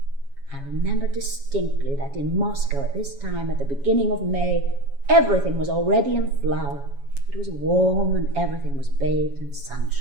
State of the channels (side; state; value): left; late; 7.2 ms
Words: I remember distinctly that in Moscow at this time, at the beginning of May, everything was already in flower. It was warm and everything was bathed in